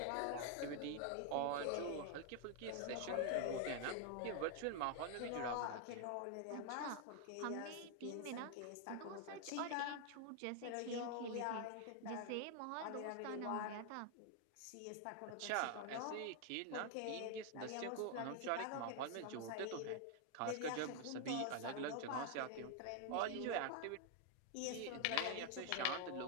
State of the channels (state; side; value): different; both; correlation 0.00